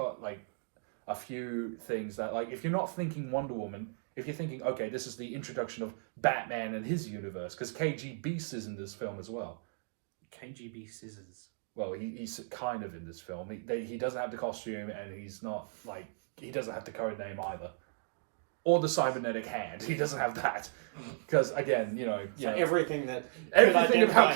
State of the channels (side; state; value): left; silent; digital silence